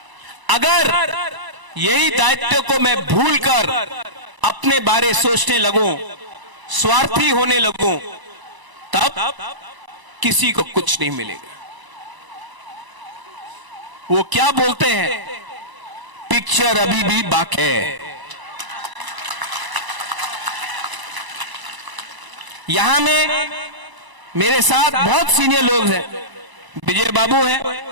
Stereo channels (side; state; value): left; late; 1.0 ms